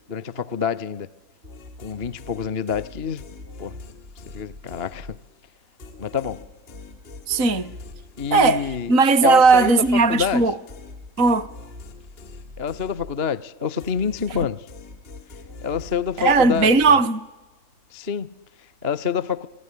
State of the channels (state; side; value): late; left; 3.9 ms